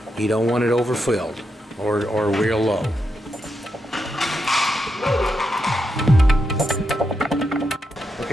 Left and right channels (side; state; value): both; normal; correlation 0.84